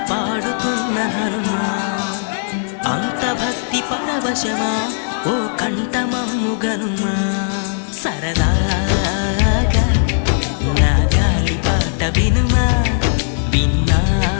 పాడుతున్న హనుమా, అంత భక్తి పరవశమా ఓ కంఠమమ్ము గనుమా. సరదా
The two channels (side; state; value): right; silent; digital silence